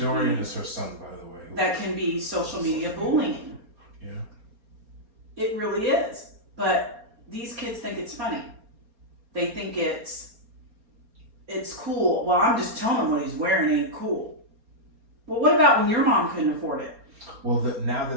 is her son, by the way. That can be social media bullying. Yeah. It really is. But these kids think it's funny. They think it's cool. Well, I'm just telling him what he's wearing ain't cool. Well, what about when your mom couldn't afford it? Well, now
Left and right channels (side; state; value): left; late; 4.3 ms